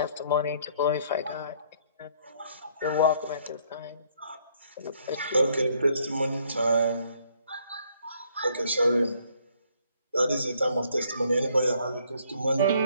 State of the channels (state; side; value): inverted; both; correlation -0.65